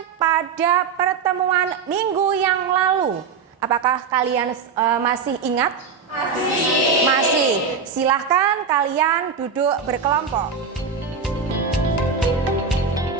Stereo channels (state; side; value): quieter; left; 5.7 dB